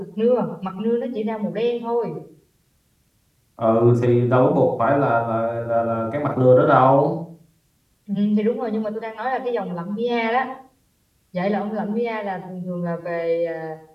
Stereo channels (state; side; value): identical; both; correlation 1.00